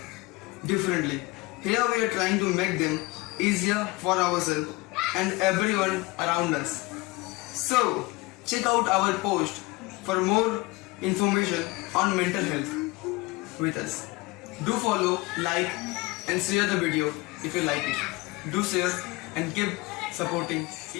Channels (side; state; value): right; quieter; 23.0 dB